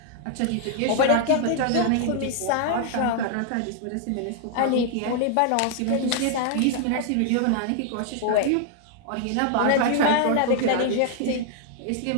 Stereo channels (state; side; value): different; both; correlation 0.00